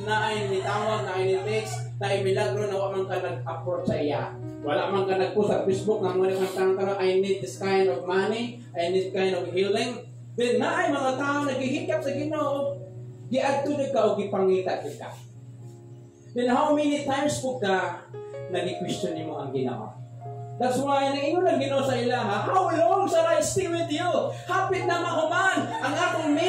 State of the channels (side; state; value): both; identical; correlation 1.00